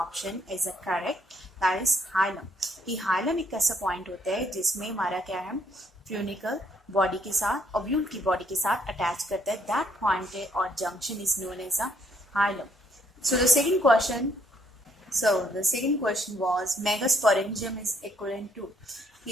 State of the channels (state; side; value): normal; both; correlation 0.69